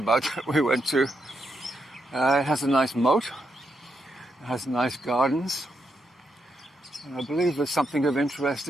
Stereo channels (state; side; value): normal; both; correlation 0.81